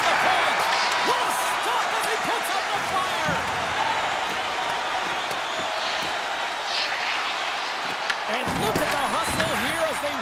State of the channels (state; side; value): identical; both; correlation 1.00